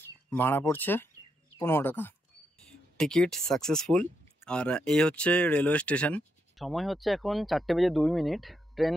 ভাড়া পড়ছে 15 টাকা। Ticket successful. আর এই হচ্ছে রেলওয়ে স্টেশন। সময় হচ্ছে এখন 4:02। ট্রেন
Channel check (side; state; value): both; normal; correlation 0.81